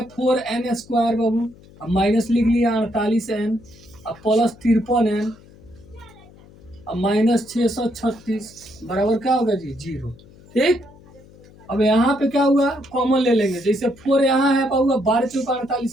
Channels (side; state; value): left; noise; hum, 24 dB below the sound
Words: 4n स्क्वायर बाबू, अब माइनस लिख लिया 48n अब प्लस 53n अब माइनस 636 बराबर क्या होगा जी 0। ठीक, अब यहाँ पे क्या हुआ कॉमन ले लेंगे, जैसे 4 यहाँ है पाऊंगा 12 चौका